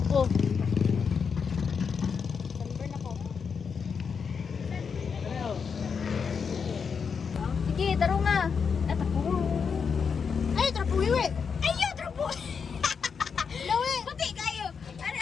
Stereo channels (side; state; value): right; quieter; 6.1 dB